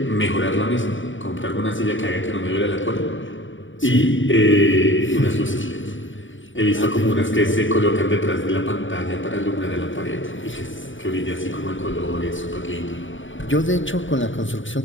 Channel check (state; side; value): late; right; 0.56 ms